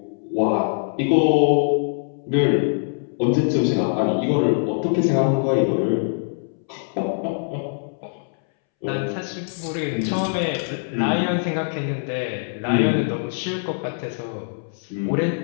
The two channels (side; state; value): right; silent; 63 dB below the other